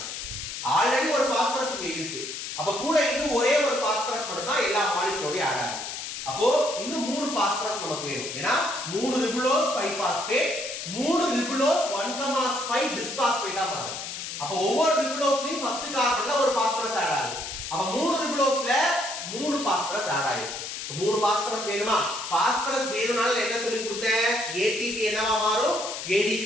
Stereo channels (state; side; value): noise; left; hiss, 7 dB below the sound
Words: ஆல்ரெடி ஒரு பாஸ்பரஸ் இங்க இருக்கு. அப்ப கூட இன்னும் ஒரே ஒரு பாஸ்பரஸ் மட்டும் தான் எல்லா மாலிக்யூலோட ஆட் ஆகும். அப்போ இன்னும் 3 பாஸ்பரஸ் நமக்கு வேணும். ஏனா 3 ரிபுலோஸ் 5 பாஸ்பேட் 3 ரிபுலோஸ் 1,5 பிஸ்பாஸ்பேட்டா மாறும். அப்ப ஒவ்வொரு ரிபுலோஸ்லயும் ஃபர்ஸ்ட் கார்பன்ல ஒரு பாஸ்பரஸ் ஆட் ஆகும். அப்ப 3 ரிபுலோஸ்ல 3 பாஸ்பரஸ் ஆட் ஆயிருக்கு. 3 பாஸ்பரஸ் வேணுமா? பாஸ்பரஸ் வேணும்னால என்ன சொல்லி கொடுத்தேன்? ATP என்னவா மாறும்? ADP